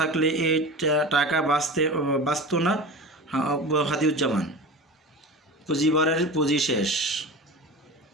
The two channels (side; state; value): both; normal; correlation 0.31